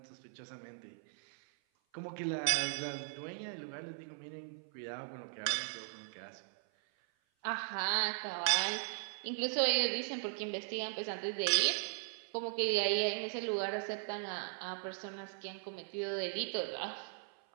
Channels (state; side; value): silent; left; 52 dB below the other